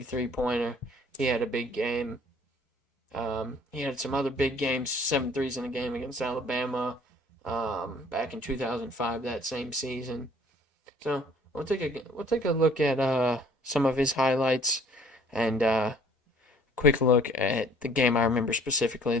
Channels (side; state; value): both; normal; correlation 0.55